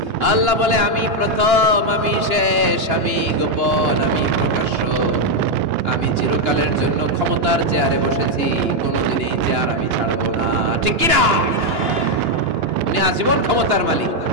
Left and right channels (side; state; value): left; late; 2.9 ms